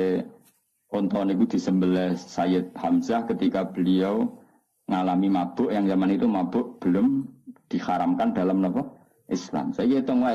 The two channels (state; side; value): identical; both; correlation 1.00